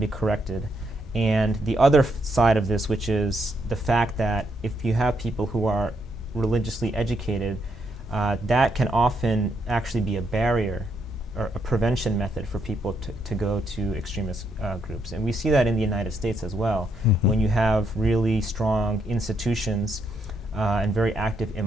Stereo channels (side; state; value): both; normal; correlation 0.76